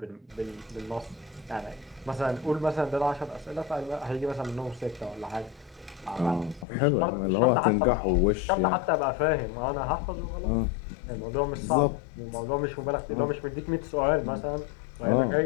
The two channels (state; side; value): drops out; right; at 6.7 s